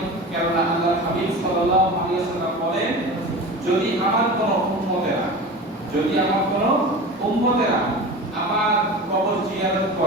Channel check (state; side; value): normal; both; correlation 0.32